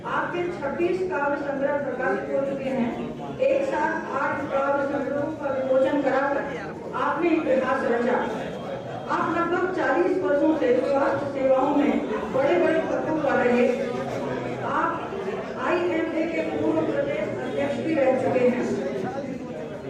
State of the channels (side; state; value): both; identical; correlation 1.00